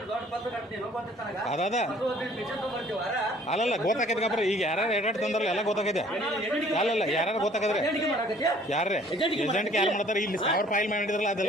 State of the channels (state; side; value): normal; both; correlation 0.56